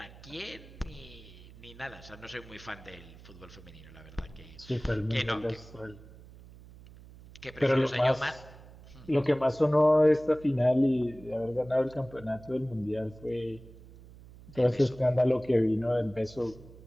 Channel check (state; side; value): noise; right; hum, 20 dB below the sound